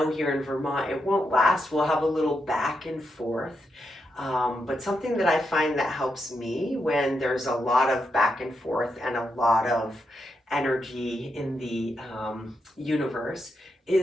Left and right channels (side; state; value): both; normal; correlation 0.83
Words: here in Vermont, it won't last. We'll have a little back and forth. But something that I find that helps me when there's a lot of back and forth and a lot of energy in the universe